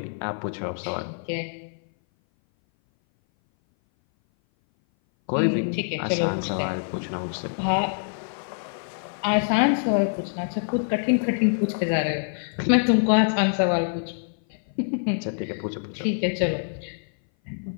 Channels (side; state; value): right; silent; 58 dB below the other